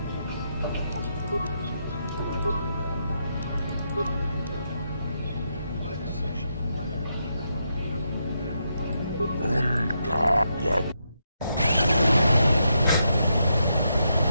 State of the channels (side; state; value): both; inverted; correlation -0.81